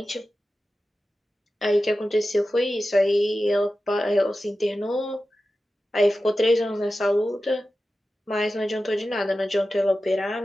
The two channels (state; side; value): normal; both; correlation 0.93